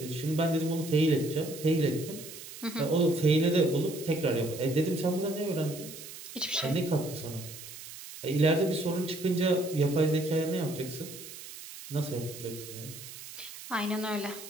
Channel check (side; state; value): right; noise; hiss, 13 dB below the sound